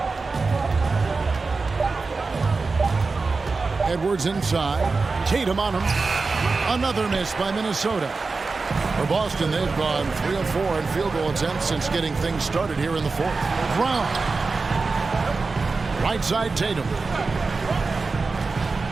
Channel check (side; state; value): left; quieter; 4.1 dB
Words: Edwards inside, Tatum on him. Another miss by Minnesota. For Boston, they've gone 3 of 4 in field goal attempts since getting things started here in the 4th. Brown. Right side Tatum.